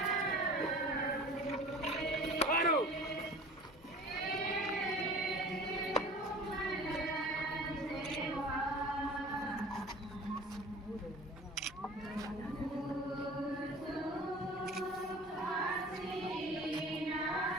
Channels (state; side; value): normal; both; correlation 0.42